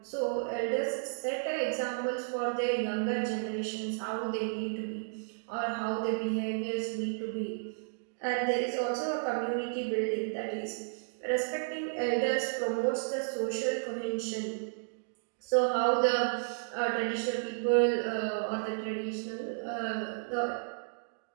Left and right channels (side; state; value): left; silent; digital silence